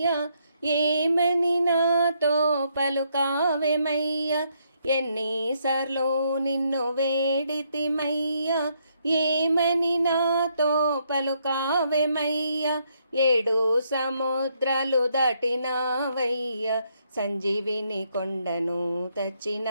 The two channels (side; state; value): both; inverted; correlation -0.74